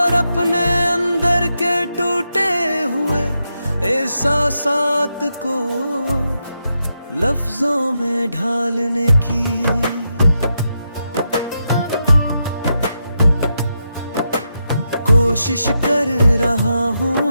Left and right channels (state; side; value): inverted; both; correlation -0.84